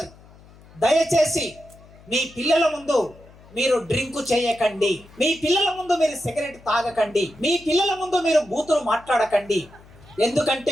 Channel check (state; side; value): noise; left; hum, 24 dB below the sound